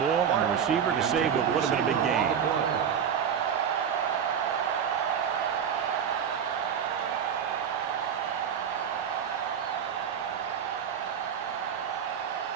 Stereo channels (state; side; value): quieter; left; 8.0 dB